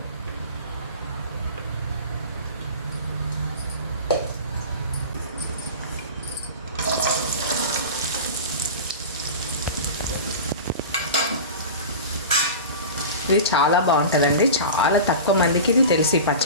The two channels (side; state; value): both; inverted; correlation -0.32